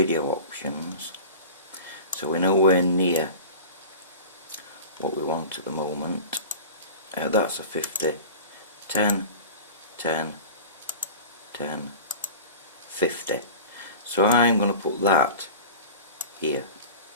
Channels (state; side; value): inverted; both; correlation -0.35